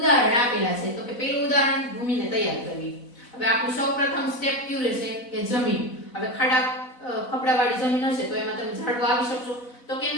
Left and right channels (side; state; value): right; late; 4.0 ms